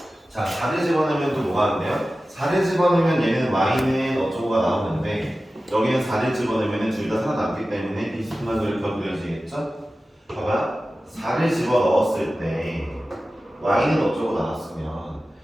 자 4를 집어넣으면 또 뭐가 안 돼요? 4를 집어넣으면 얘는 y는 어쩌고가 나오는데 여기는 4를 집어넣으면 둘 다 살아남기 때문에 비스듬한 그래프가 그려지겠죠? 봐봐 4를 집어넣었을 때 y는 어쩌고 나왔으면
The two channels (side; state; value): both; normal; correlation 0.95